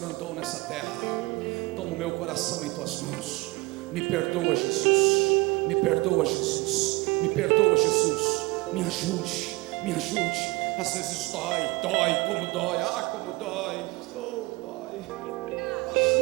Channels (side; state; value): left; quieter; 23.5 dB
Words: andou nessa terra. Toma o meu coração em tuas mãos. Me perdoa, Jesus. Me perdoa, Jesus. Me perdoa, Jesus. Me ajude, me ajude. Às vezes dói, como dói. Como dói. Dói.